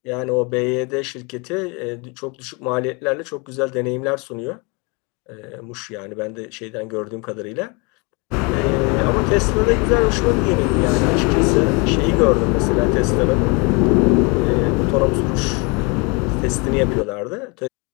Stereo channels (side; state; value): right; quieter; 30.3 dB